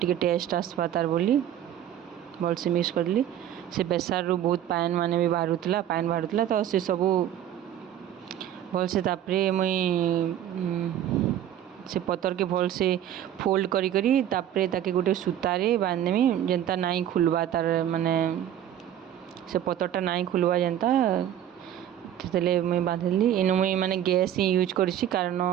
टेस्ट आसबा तार बोली भल से मिक्स करदेली से बेसार रु बहुत पान माने भी बाहरुला तो से सबू भल से तापरे मुई से पतर के भल से फोल्ड करी करी तापरे ताके गोटे सूतारे बांधदेमी जेनता नाई खुलवा तार माने से पतरटा नाई खुलवा जेनता से मुई बांधिली इनु मुई माने गैस ही यूज करछि कारण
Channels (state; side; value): quieter; left; 11.0 dB